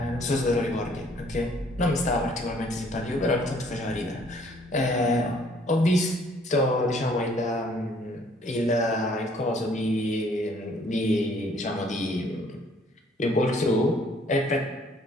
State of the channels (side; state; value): both; normal; correlation 0.61